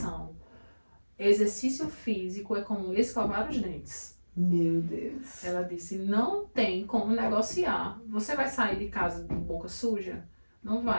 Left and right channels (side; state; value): both; inverted; correlation -1.00